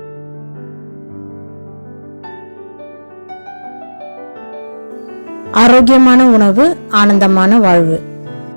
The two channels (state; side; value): inverted; both; correlation -1.00